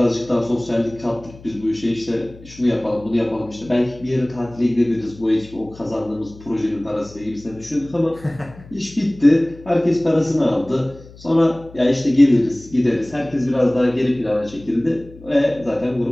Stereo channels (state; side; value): noise; left; hum, 20 dB below the sound